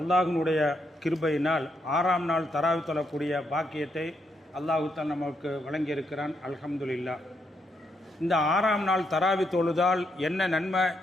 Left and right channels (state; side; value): normal; both; correlation 0.78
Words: கிருபையினால் 6ஆம் நாள் தராவி தொழக்கூடிய பாக்கியத்தை அல்லாஹ் தான் நமக்கு வழங்கியிருக்கிறான். அல்ஹம்துலில்லா. இந்த 6ஆம் நாள் தராவி தொழுதால் என்ன நன்மை